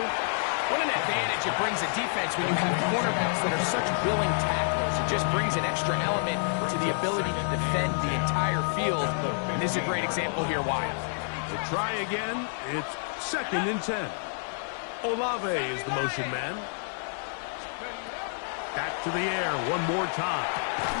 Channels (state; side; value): silent; right; digital silence